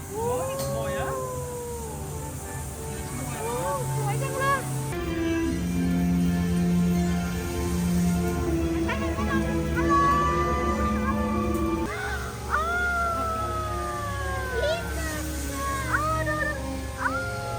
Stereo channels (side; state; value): both; identical; correlation 1.00